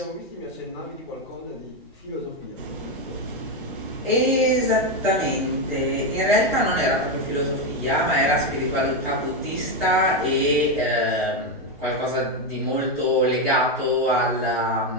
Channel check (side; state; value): both; normal; correlation 0.08